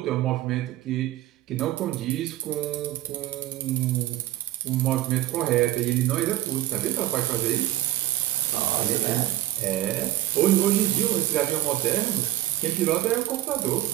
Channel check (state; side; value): quieter; left; 14.8 dB